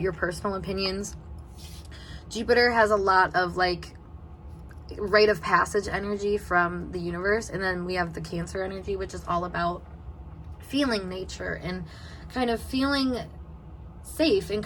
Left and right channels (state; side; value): identical; both; correlation 1.00